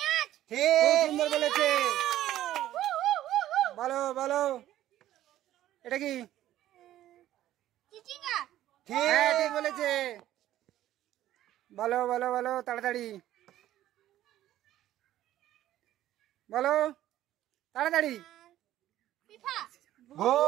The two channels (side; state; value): left; quieter; 13.3 dB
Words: খুব সুন্দর বলেছে। বলো এটা কি? হ্যাঁ ঠিক বলেছে। বলো তাড়াতাড়ি বলো, তাড়াতাড়ি।